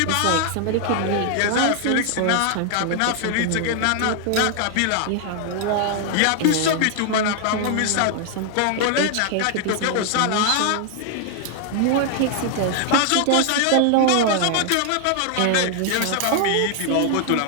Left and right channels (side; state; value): both; different; correlation 0.00